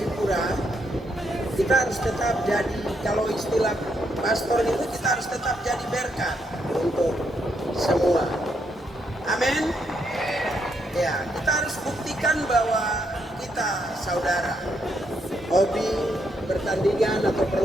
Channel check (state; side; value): normal; both; correlation 0.77